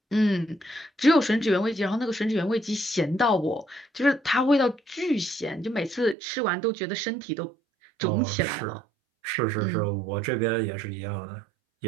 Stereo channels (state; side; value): drops out; left; at 6.2 s